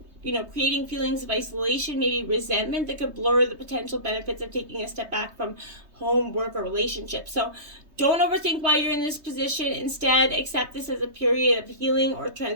creating feelings of isolation, maybe resentment that could blur the potential benefits of taking a step back from home, work, or relationships. So don't overthink why you're in this position. Instead, accept this as a period of healing or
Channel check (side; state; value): left; late; 3.2 ms